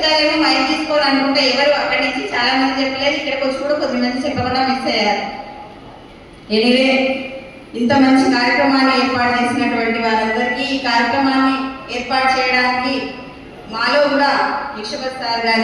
మైక్ తీసుకోవాలనుకుంటే ఎవరు అక్కడి నుంచి చాలా మంది చెప్పలేదు. ఇక్కడికి వచ్చి కూడా కొద్దిమంది చెప్పకుండా మిస్ అయ్యారు. ఎనివే, ఇంత మంచి కార్యక్రమాన్ని ఏర్పాటు చేసినటువంటి వారందరికీ, ఈ కార్యక్రమాన్ని ఏర్పాటు చేయడానికి మాలో కూడా విశ్వపత్ సార్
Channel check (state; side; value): identical; both; correlation 1.00